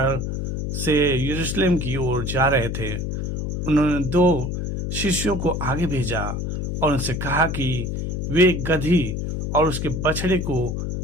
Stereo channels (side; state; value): left; noise; hum, 3 dB below the sound